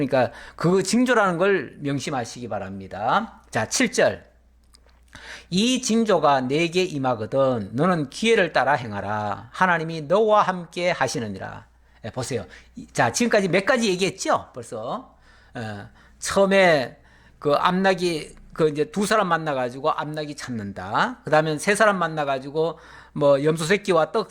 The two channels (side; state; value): both; identical; correlation 1.00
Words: 그 징조라는 걸 명심하시기 바랍니다. 자, 7절. 이 징조가 내게 임하거든 너는 기회를 따라 행하라. 하나님이 너와 함께 하시느니라. 보세요. 자, 지금까지 몇 가지 얘기했죠? 벌써. 처음에 그 암나기 그 이제 두 사람 만나가지고 암나기 찾는다. 그 다음에 세 사람 만나가지고 뭐 염소 새끼와 떡